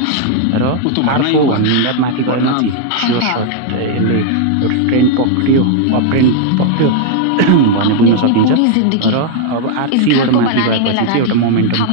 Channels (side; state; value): both; different; correlation 0.00